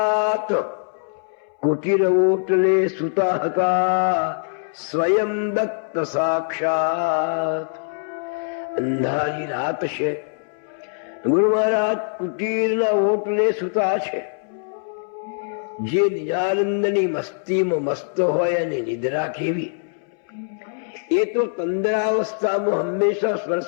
કુટીર ઓટલે સુતા હતા સ્વયં દત્ત સાક્ષાત. અંધારી રાત છે, ગુરુ મહારાજ કુટીરના ઓટલે સુતા છે. જે નિજાનંદની મસ્તીમાં મસ્ત હોય અને નિદ્રા કેવી, એ તો તંદ્રાવસ્થામાં હંમેશા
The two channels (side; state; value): right; silent; 64 dB below the other